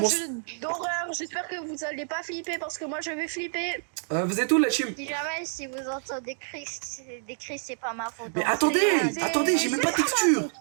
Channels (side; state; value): left; silent; digital silence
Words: un jeu d'horreur. J'espère que vous allez pas flipper parce que moi je vais flipper. Vous êtes où, la team? Si jamais si vous entendez des cris, c'est pas ma faute. Mais hein. attendez, j'ai même pas de texture.